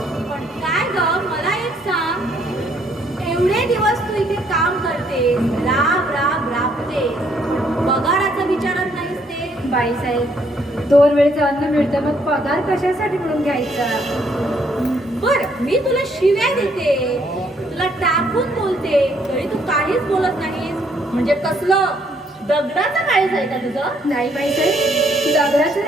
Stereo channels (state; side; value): normal; both; correlation 0.68